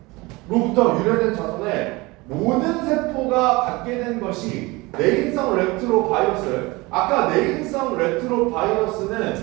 로부터 유래된 자손의 모든 세포가 갖게 된 것이 내인성 레트로바이러스를 아까 내인성 레트로 바이러스는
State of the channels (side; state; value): left; quieter; 23.1 dB